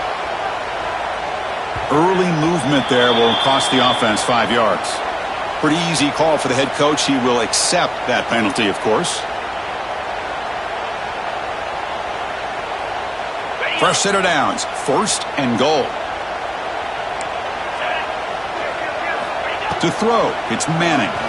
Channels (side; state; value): both; identical; correlation 1.00